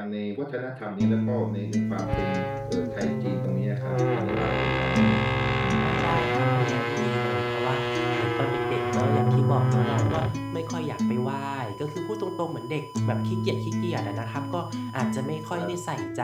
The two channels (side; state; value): both; identical; correlation 1.00